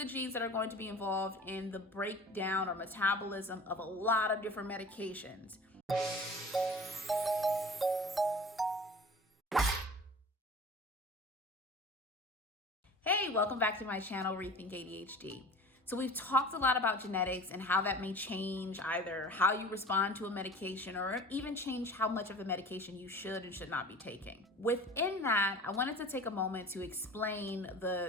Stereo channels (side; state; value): both; normal; correlation 0.41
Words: genes that are going to be involved in the breakdown or metabolism of a lot of different medications. Hey, welcome back to my channel, Rethink ADHD. So we've talked a lot about genetics and how that may change either how you respond to a medication or even change how much of the medication you should and should not be taking. Within that, I wanted to take a moment to explain